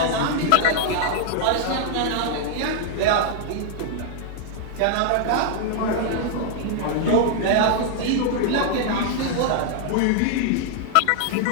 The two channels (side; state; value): both; different; correlation 0.00